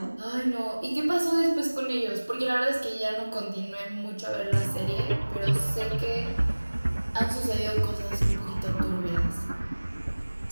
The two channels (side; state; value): both; inverted; correlation -1.00